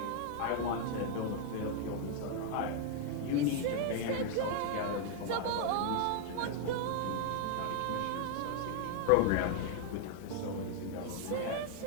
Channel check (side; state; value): both; different; correlation 0.00